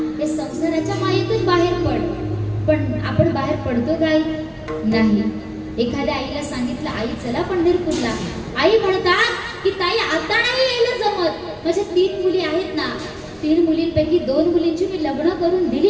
या संसाराच्या मायेतून बाहेर पड. पण आपण बाहेर पडतो काय नाही. एखाद्या आईला सांगितलं, आई चला पंढरपूरला, आई म्हणतात की ताई आता नाही यायला जमत, माझ्या 3 मुली आहेत ना, 3 मुलींपैकी 2 मुलींची मी लग्न करून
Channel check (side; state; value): both; identical; correlation 1.00